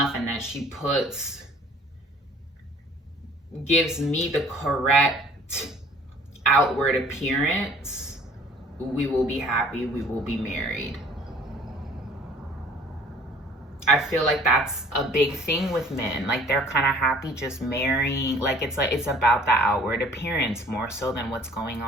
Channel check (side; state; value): both; normal; correlation 0.52